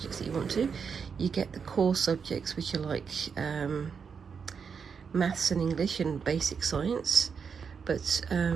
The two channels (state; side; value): quieter; left; 6.2 dB